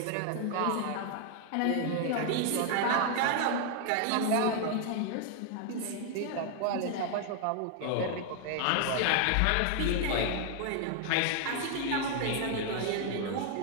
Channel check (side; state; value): both; different; correlation 0.00